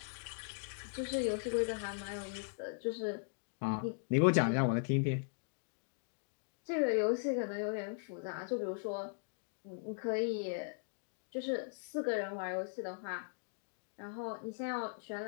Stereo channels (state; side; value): silent; right; digital silence